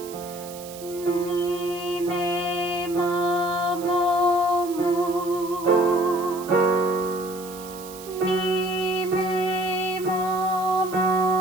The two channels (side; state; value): right; noise; hiss, 16 dB below the sound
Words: Mi, me, ma, mo, mu. Mi, me, ma,